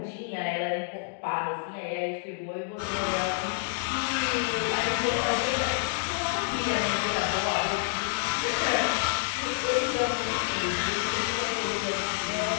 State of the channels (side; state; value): right; silent; digital silence